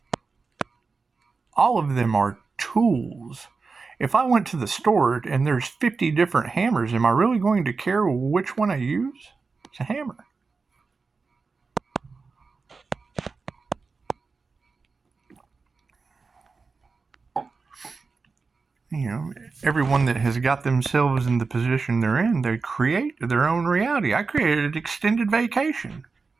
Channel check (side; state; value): left; quieter; 4.5 dB